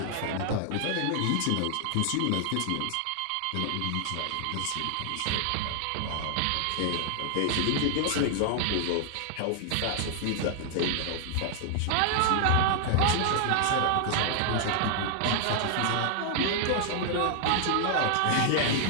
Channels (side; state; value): both; different; correlation 0.00